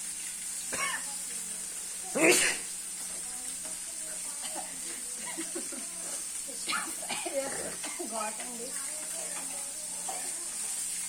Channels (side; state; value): both; identical; correlation 1.00